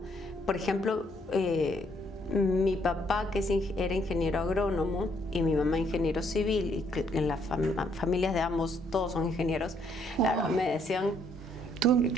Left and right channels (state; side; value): noise; right; hum, 24 dB below the sound